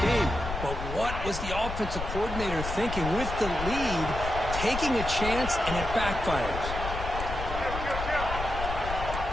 game. But what was the offensive coordinator thinking with the lead, taking a chance, and it backfires?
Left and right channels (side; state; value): left; noise; rumble, 6 dB below the sound